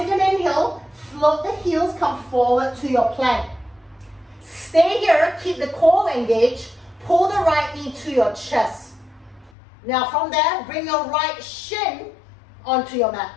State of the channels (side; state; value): right; drops out; at 9.5 s